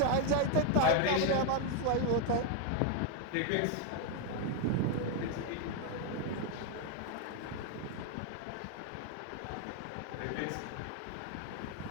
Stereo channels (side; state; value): both; different; correlation 0.01